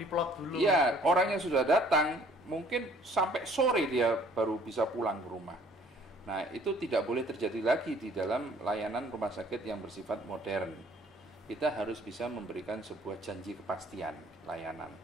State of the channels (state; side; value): normal; both; correlation 0.57